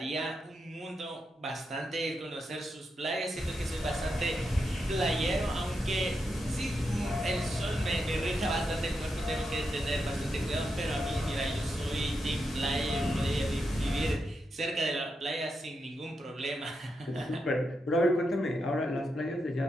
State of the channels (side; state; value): both; normal; correlation 0.85